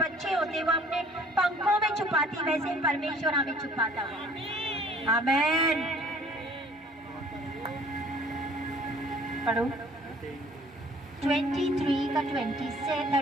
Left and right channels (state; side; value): normal; both; correlation 0.54